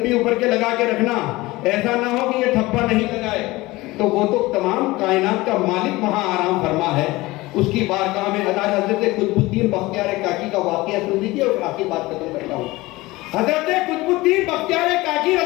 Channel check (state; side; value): quieter; right; 20.2 dB